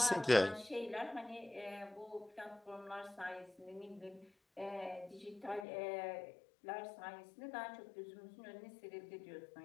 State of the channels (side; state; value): right; drops out; at 5.7 s